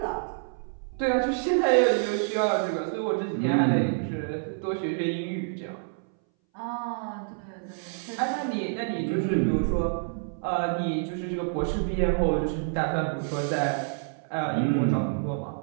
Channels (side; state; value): left; silent; 60 dB below the other